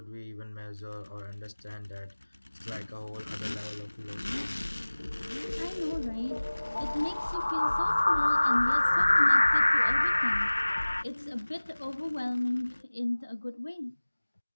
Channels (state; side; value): inverted; both; correlation -1.00